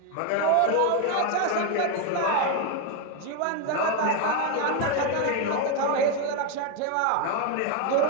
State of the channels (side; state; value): both; different; correlation 0.02